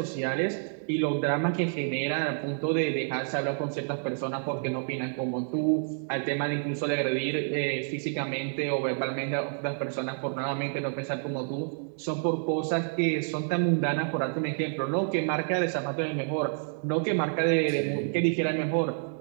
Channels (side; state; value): left; silent; digital silence